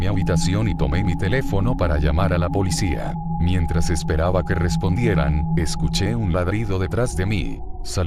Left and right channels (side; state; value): both; identical; correlation 1.00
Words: habitación y tomé mi teléfono para llamar a la policía. Mientras esperaba que respondieran, escuché un ladrido detrás de mí.